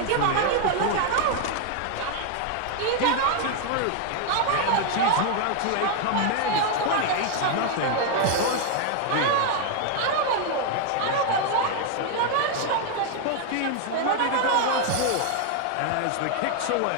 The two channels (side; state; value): both; different; correlation 0.00